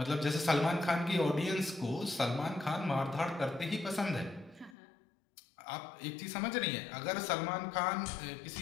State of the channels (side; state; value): right; drops out; at 4.8 s